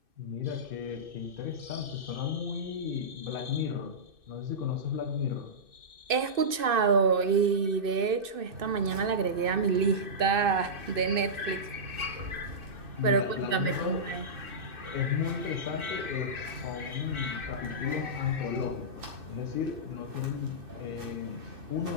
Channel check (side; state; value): left; late; 2.6 ms